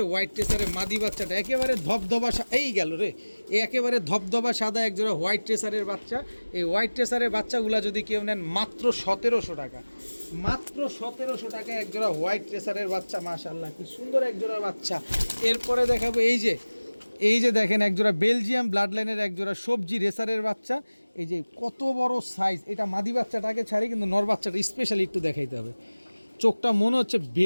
হোয়াইট ট্রেসারের মাদি বাচ্চাটা। একেবারে ধবধবা এই গেল রে, একেবারে ধবধবা সাদা এক জোড়া হোয়াইট ট্রেসারের বাচ্চা। এই হোয়াইট ট্রেসারের বাচ্চাগুলো যদি কেউ নেন মাত্র 1700 টাকা, মাত্র 1700 টাকায় এক জোড়া হোয়াইট ট্রেসারের বাচ্চা। মাশাআল্লাহ কি সুন্দর এক জোড়া বাচ্চা। এরপরে দেখাবো এই যে দেখেন একজোড়া বেলজিয়াম ব্লাড লাইনের একজোড়া সবজি রেসারের বাচ্চা। এই যে কত বড় সাইজ, এটা মাদি বাচ্চাটাকে ছাড়ি, কিন্তু নর বাচ্চাটা স্পেশালি একটু দেখাইতে হবে। চোখটা মনে হচ্ছে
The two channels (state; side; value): inverted; both; correlation -1.00